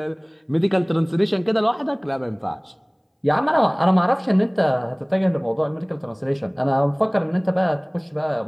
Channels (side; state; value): both; identical; correlation 1.00